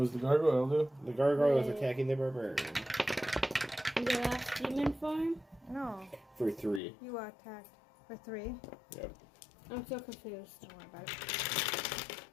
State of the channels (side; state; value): right; drops out; at 6.8 s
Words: does the gargoyle do? The gargoyle is Right. attacking the barbarian. The last demon form? No, For 3. you attacked for 3. Yep. I'm so confused. Don't worry about it.